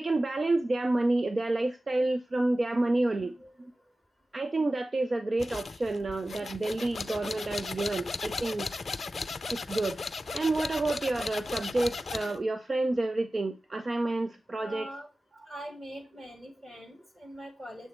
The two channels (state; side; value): normal; both; correlation 0.95